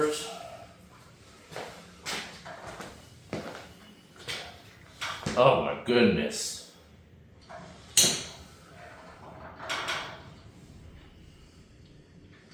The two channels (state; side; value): identical; both; correlation 1.00